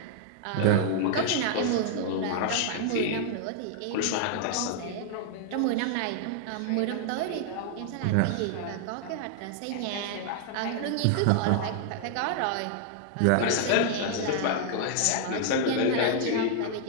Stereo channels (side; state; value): both; different; correlation 0.00